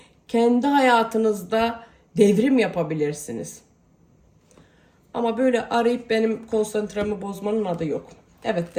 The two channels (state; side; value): identical; both; correlation 1.00